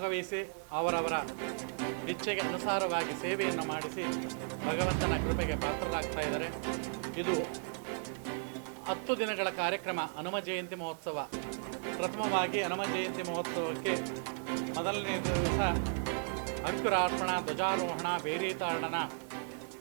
ಅವರವರ ಇಚ್ಛೆಗೆ ಅನುಸಾರವಾಗಿ ಸೇವೆಯನ್ನು ಮಾಡಿಸಿ ಭಗವಂತನ ಕೃಪೆಗೆ ಪಾತ್ರರಾಗ್ತಾ ಇದ್ದಾರೆ. ಇದು 10 ದಿನಗಳ ಕಾರ್ಯಕ್ರಮ ಹನುಮ ಜಯಂತಿ ಮಹೋತ್ಸವ. ಪ್ರಥಮವಾಗಿ ಹನುಮ ಜಯಂತಿ ಮಹೋತ್ಸವಕ್ಕೆ ಮೊದಲನೇ ದಿವಸ ಅಂಕುರಾರ್ಪಣ, ಧ್ವಜಾರೋಹಣ, ಬೇರೀತಾಡನ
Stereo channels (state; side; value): silent; left; 54 dB below the other